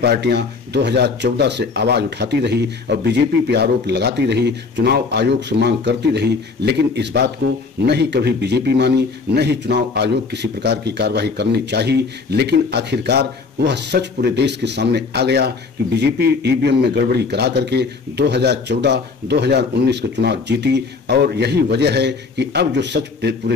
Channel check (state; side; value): quieter; right; 4.6 dB